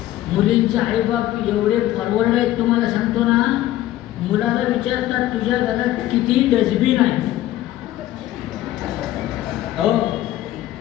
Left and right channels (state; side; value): quieter; right; 14.3 dB